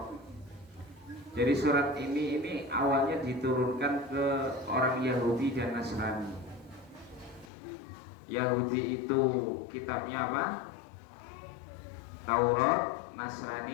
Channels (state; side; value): drops out; right; at 7.5 s